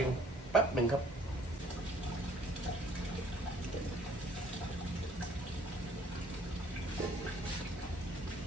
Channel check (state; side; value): normal; both; correlation 0.58